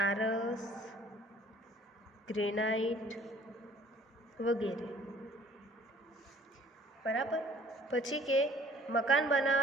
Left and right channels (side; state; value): both; normal; correlation 0.54